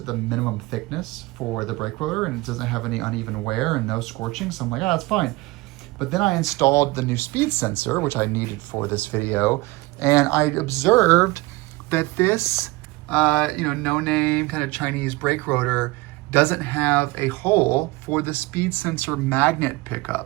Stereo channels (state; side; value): quieter; left; 21.9 dB